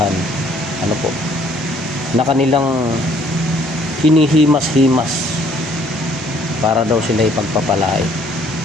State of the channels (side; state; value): both; normal; correlation 0.61